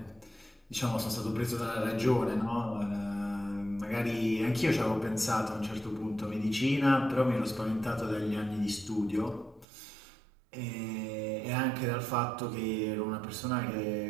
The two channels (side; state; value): left; drops out; at 9.7 s